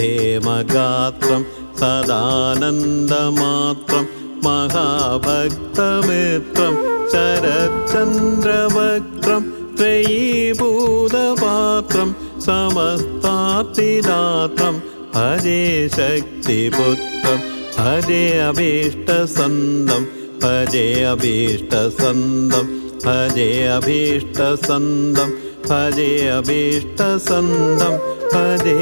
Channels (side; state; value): both; inverted; correlation -1.00